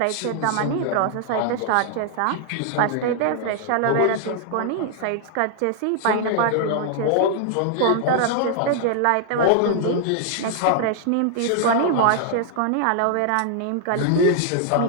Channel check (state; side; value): different; both; correlation 0.00